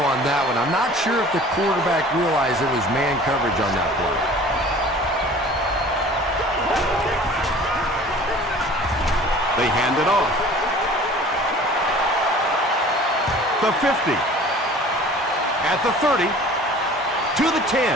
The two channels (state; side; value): normal; both; correlation 0.46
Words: that one. I'm not sure if the quarterback realized it was man coverage on that play. They hand it off. The 50. At the 30. To the